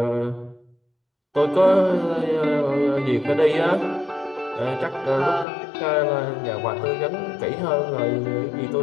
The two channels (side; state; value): right; drops out; at 5.5 s